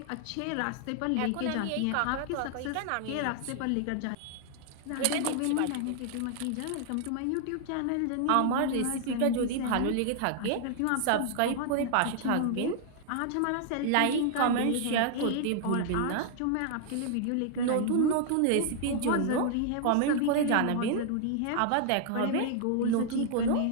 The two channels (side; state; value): both; different; correlation 0.00